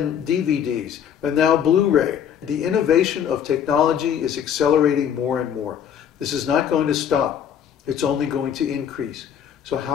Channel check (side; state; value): right; quieter; 8.7 dB